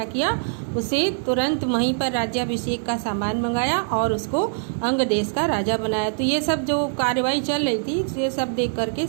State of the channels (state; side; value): silent; left; digital silence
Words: किया, उसे तुरंत वहीं पर राज्याभिषेक का सामान मंगाया और उसको अंग देश का राजा बनाया। तो ये सब जो कार्रवाई चल रही थी, ये सब देख करके